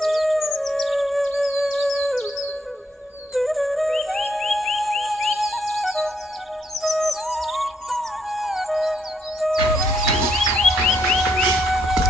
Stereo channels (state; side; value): normal; both; correlation 0.73